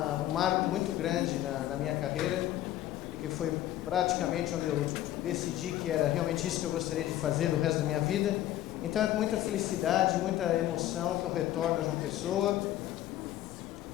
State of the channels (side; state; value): right; quieter; 13.5 dB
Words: marco muito grande na minha carreira, que foi praticamente onde eu decidi que era realmente isso que eu gostaria de fazer do resto da minha vida. Então é com muita felicidade, muita emoção que eu retorno a João Pessoa